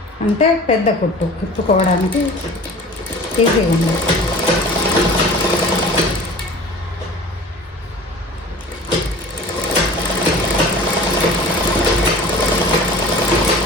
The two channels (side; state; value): both; normal; correlation 0.42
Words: అంటే పెద్ద కుట్టు విప్పుకోవడానికి ఈజీగా ఉంది.